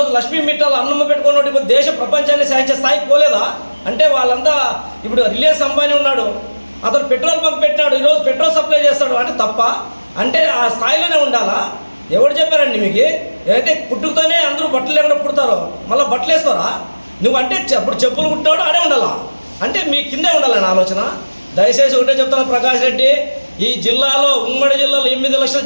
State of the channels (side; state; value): both; inverted; correlation -1.00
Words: లక్ష్మీ మిట్టాలు అన్నమ్మ పెట్టుకున్నట్టు ఇప్పుడు దేశ ప్రపంచాన్ని సాధించే స్థాయికి పోలేదా? అంటే వాళ్ళంతా ఇప్పుడు రిలయన్స్ అంబానీ ఉన్నాడు, అతను పెట్రోల్ బంక్ పెట్టినాడు, ఈరోజు పెట్రోల్ సప్లై చేస్తాడు. అంటే తప్ప? అంటే ఆ స్థాయిలోనే ఉండాలా? ఎవరు చెప్పారండి మీకు? ఏదైతే పుట్టుకతోనే అందరూ బట్టలు లేకుండా పుడతారో మళ్ళీ బట్టలు వేసుకోరా? నువ్వు అంటే అప్పుడు చెప్పులు కుట్టాడు ఆడే ఉండాలా? అంటే మీ కిందే ఉండాలని ఆలోచన. దయచేసి ఒకటే చెప్తాను ప్రకాష్ రెడ్డి, ఈ జిల్లాలో ఉమ్మడి జిల్లాలో 8 లక్షల